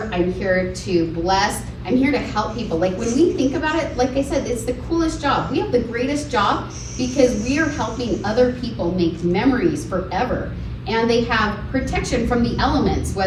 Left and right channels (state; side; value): identical; both; correlation 1.00